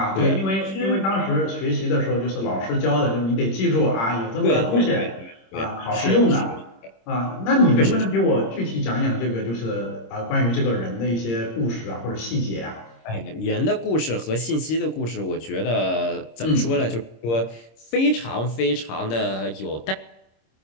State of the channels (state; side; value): late; right; 26 ms